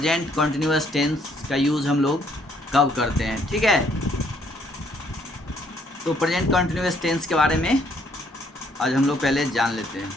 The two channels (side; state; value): both; normal; correlation 0.67